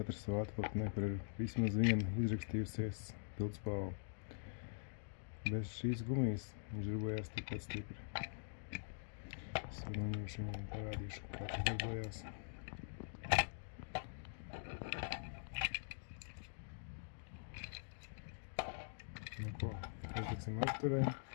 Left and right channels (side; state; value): right; silent; digital silence